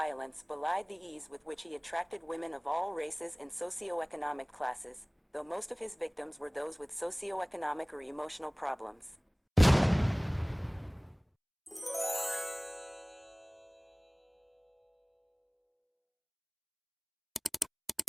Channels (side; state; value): both; identical; correlation 1.00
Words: belied the ease with which he attracted women of all races and socioeconomic classes, though most of his victims were those with socioeconomic or emotional problems.